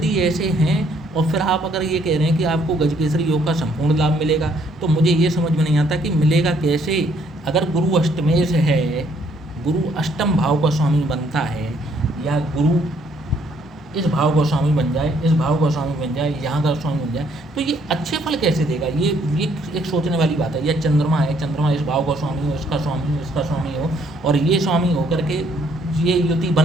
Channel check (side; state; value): both; normal; correlation 0.66